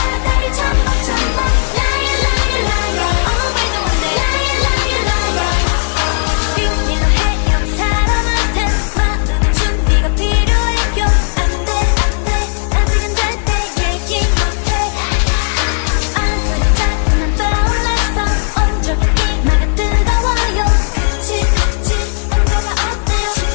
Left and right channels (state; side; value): silent; right; digital silence